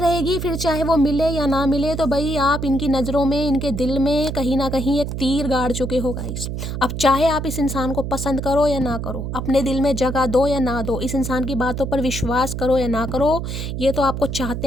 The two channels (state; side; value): noise; right; hum, 4 dB below the sound